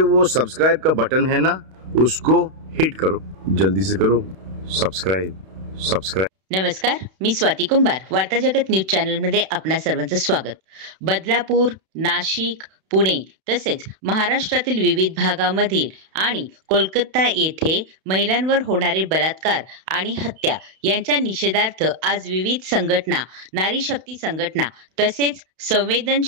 वो सब्सक्राइब का बटन है ना, उसको हिट करो, जल्दी से करो सब्सक्राइब। नमस्कार, मी स्वाती कुंभार. वार्ता जगत न्यूज चॅनल मध्ये आपणा सर्वांचं स्वागत. बदलापूर, नाशिक, पुणे तसेच महाराष्ट्रातील विविध भागामधील आणि कोलकाता येथे महिलांवर होणारे बलात्कार आणि हत्या यांच्या निषेधार्थ आज विविध संघटना, नारी शक्ती संघटना तसेच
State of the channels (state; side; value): late; left; 32 ms